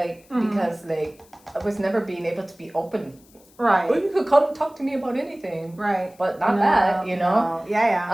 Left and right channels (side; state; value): left; noise; hiss, 29 dB below the sound